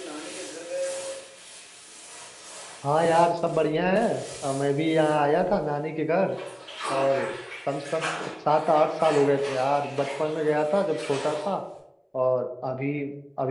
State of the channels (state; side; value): identical; both; correlation 1.00